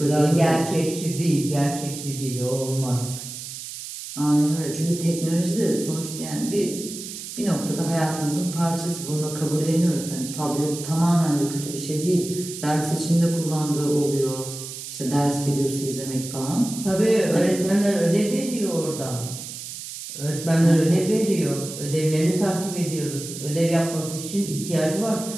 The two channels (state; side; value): noise; right; hiss, 10 dB below the sound